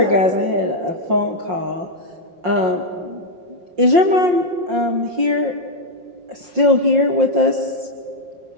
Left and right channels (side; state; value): left; late; 5.6 ms